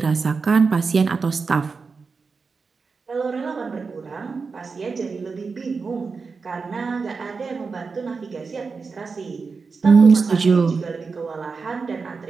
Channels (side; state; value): left; quieter; 4.8 dB